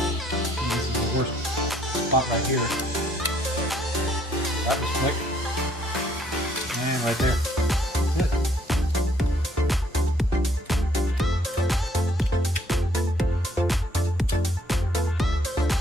this is the worst spot right here. That was quick. And right there. That's it.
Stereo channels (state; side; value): normal; both; correlation 0.66